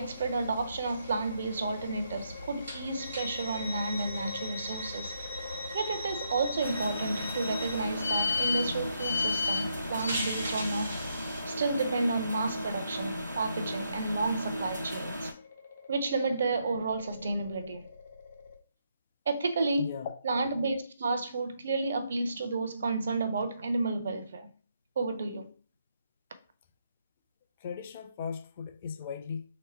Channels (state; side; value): inverted; both; correlation -0.77